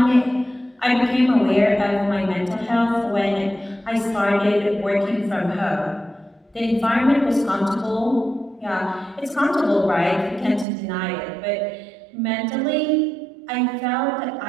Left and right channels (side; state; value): left; drops out; at 10.7 s